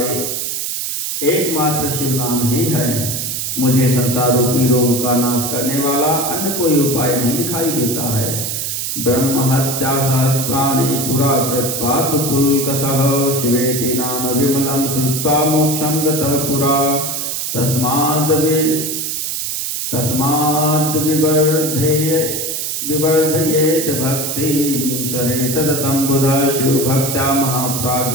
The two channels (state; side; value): noise; right; hiss, 2 dB below the sound